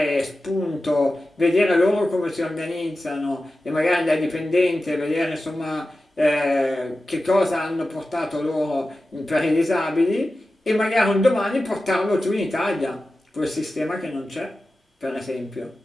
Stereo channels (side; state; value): both; normal; correlation 0.94